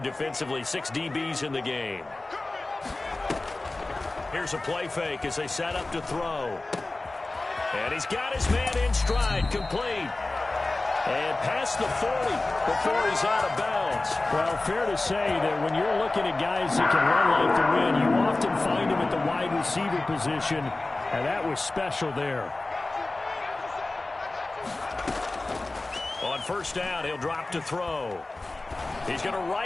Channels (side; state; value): right; quieter; 3.0 dB